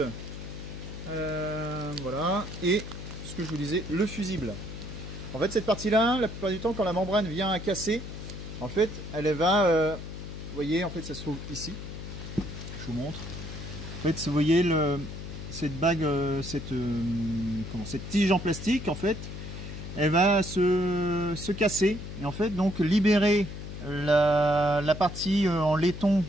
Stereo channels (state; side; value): noise; left; hum, 8 dB below the sound